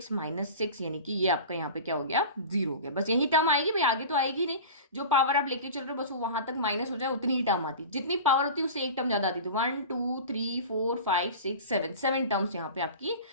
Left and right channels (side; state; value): both; inverted; correlation -0.34